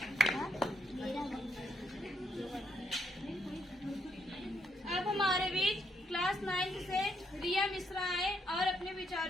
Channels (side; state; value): both; normal; correlation 0.75